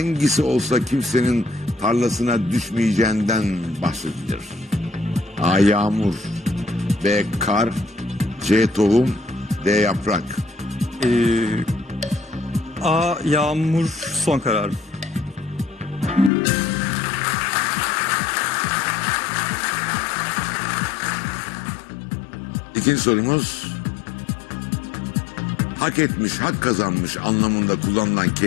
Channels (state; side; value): drops out; right; at 16.3 s